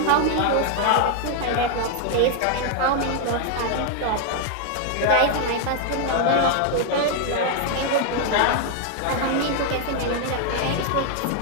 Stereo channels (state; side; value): different; both; correlation 0.00